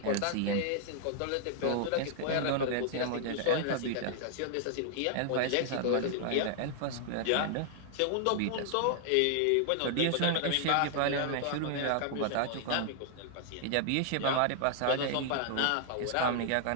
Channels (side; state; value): both; different; correlation 0.00